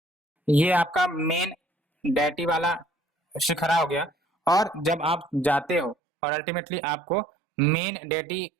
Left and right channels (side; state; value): left; drops out; at 6.0 s